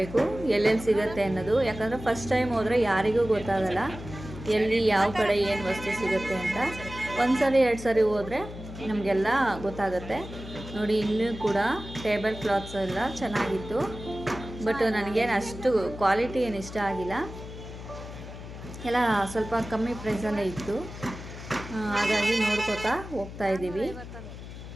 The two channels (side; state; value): left; noise; hum, 12 dB below the sound